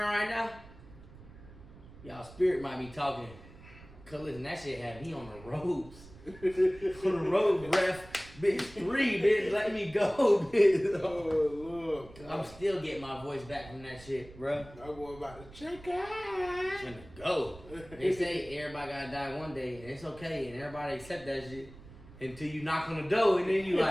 right now, y'all spirit might be talking. Cause listen, that shit had me on the ropes. On the road, ref. Bitch, 3, bitch, let me go, bitch. Oh, Lord. I'm still getting my voice back from that shit, bro. My boy about to check out. Finna go. They say everybody gotta die one day, and it's okay, and everybody accept that shit until you knock on the door, and then you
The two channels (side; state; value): right; noise; rumble, 19 dB below the sound